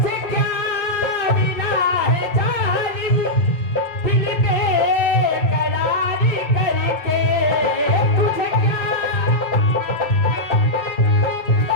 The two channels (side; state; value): right; late; 2.4 ms